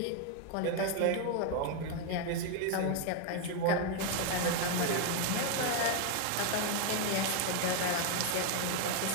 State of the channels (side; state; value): both; different; correlation 0.01